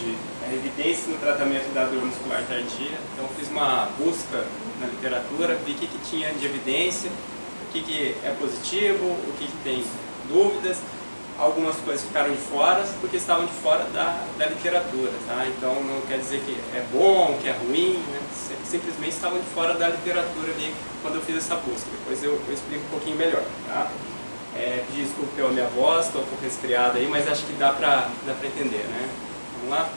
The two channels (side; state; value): both; inverted; correlation -1.00